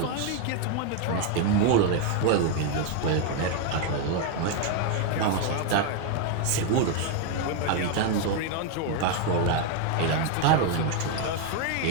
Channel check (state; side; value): different; both; correlation 0.01